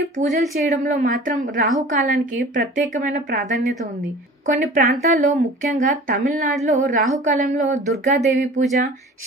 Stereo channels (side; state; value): both; normal; correlation 0.42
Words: పూజలు చేయడంలో మాత్రం రాహుకాలానికి ప్రత్యేకమైన ప్రాధాన్యత ఉంది. కొన్ని ప్రాంతాల్లో, ముఖ్యంగా తమిళనాడులో రాహుకాలంలో దుర్గాదేవి పూజ,